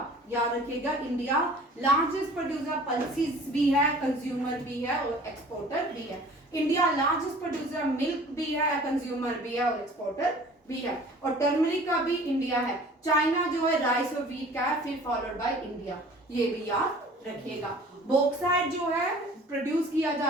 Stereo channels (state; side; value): normal; both; correlation 0.48